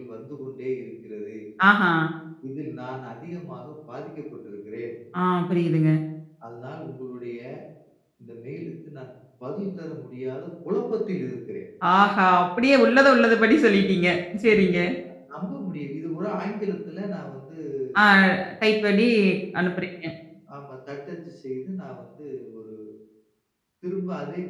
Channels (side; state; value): both; identical; correlation 1.00